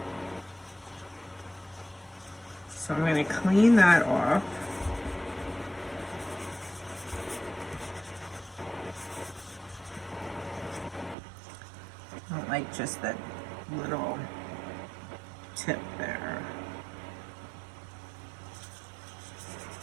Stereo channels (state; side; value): drops out; left; at 11.2 s